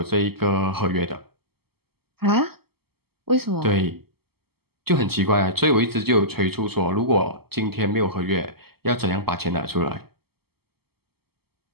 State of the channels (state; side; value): late; left; 0.96 ms